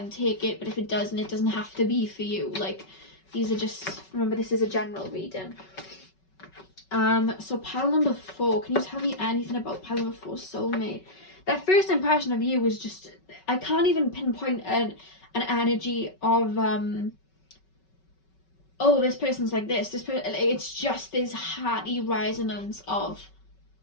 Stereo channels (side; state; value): right; late; 5.3 ms